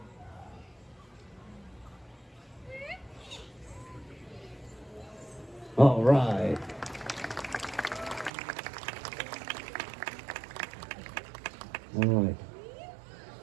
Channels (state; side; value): drops out; left; at 8.3 s